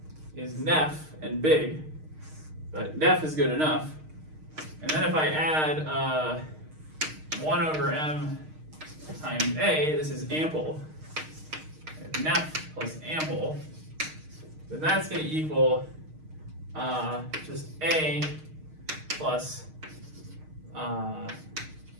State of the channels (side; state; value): left; late; 6.5 ms